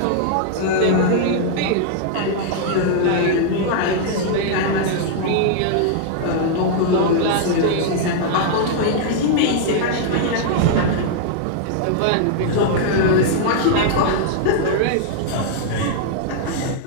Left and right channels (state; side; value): different; both; correlation -0.01